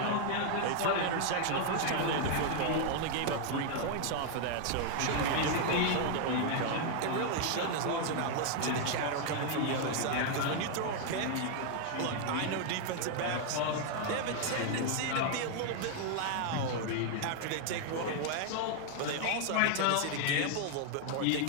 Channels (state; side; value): different; both; correlation 0.00